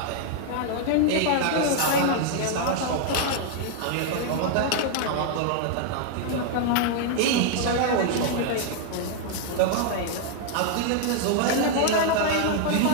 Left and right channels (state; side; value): different; both; correlation 0.00